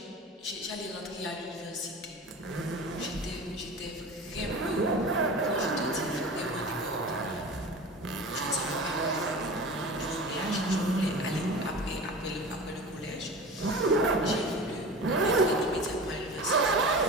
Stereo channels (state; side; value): normal; both; correlation 0.34